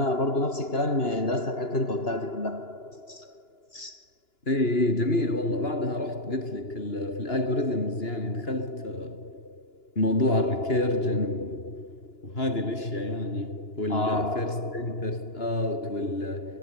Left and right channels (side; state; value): right; late; 2.9 ms